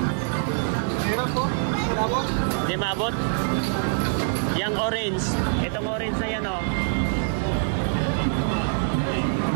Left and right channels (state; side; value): silent; left; 62 dB below the other